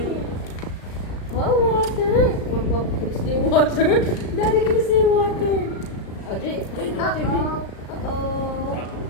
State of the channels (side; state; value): right; late; 36 ms